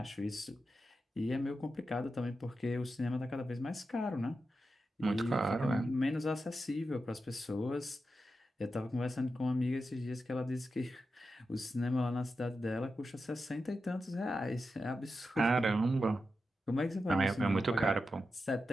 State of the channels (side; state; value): both; normal; correlation 0.89